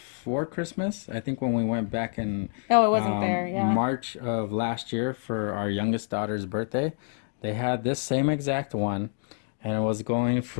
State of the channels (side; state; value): right; silent; 60 dB below the other